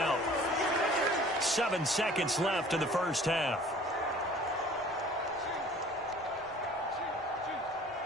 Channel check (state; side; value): normal; both; correlation 0.50